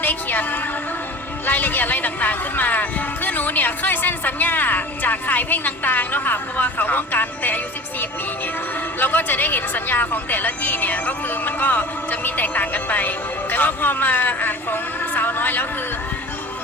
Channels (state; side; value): normal; both; correlation 0.40